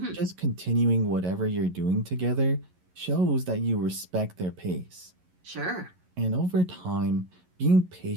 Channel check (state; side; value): late; left; 11 ms